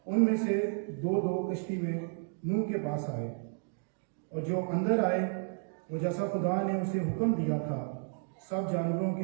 उनमें से 2-2 कश्ती में नूह के पास आए। और जो अंदर आए वो जैसा खुदा ने उसे हुक्म दिया था सब जानवरों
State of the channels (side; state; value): left; silent; 56 dB below the other